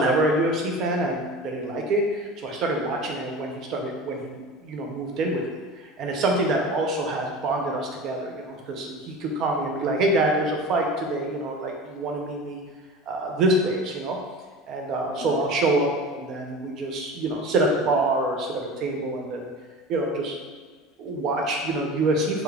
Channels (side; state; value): both; normal; correlation 0.34